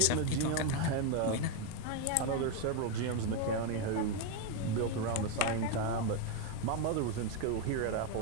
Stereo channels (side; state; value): both; different; correlation 0.02